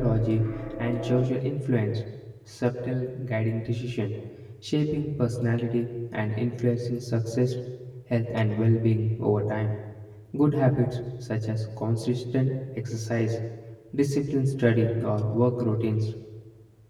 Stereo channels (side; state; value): both; identical; correlation 1.00